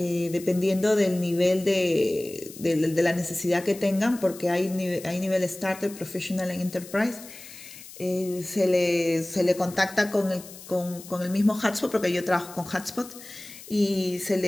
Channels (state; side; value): noise; left; hiss, 16 dB below the sound